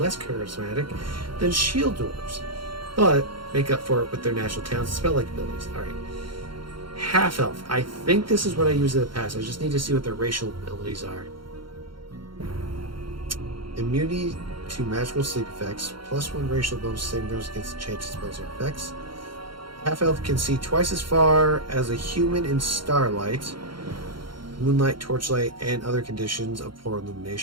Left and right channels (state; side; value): late; left; 0.73 ms